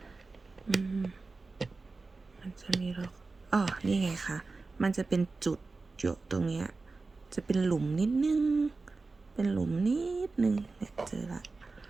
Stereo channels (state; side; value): quieter; left; 3.8 dB